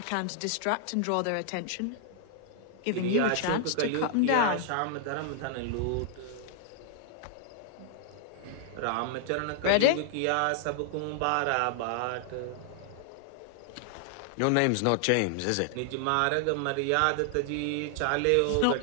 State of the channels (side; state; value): both; different; correlation 0.00